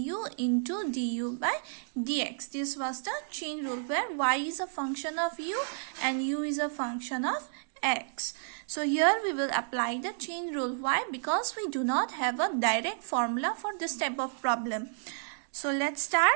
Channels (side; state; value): left; silent; digital silence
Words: into du by dx. This was the chain rule where y is a function of u and u is a function of x. So here we will apply the chain rule. Why? Because we do not have a direct formula for this type of problem. So let's